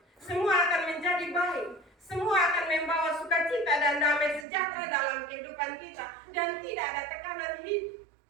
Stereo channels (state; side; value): drops out; left; at 4.5 s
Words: semua akan menjadi baik, semua akan membawa sukacita dan damai sejahtera dalam kehidupan kita, dan tidak ada tekanan hidup.